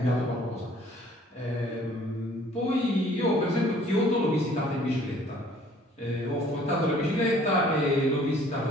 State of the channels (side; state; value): both; normal; correlation 0.56